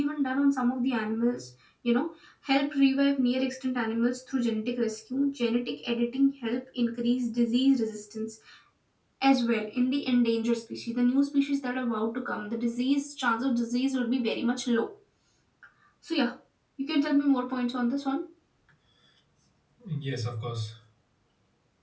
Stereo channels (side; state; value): both; identical; correlation 1.00